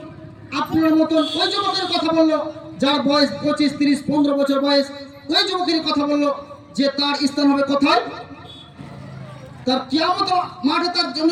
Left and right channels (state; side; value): identical; both; correlation 1.00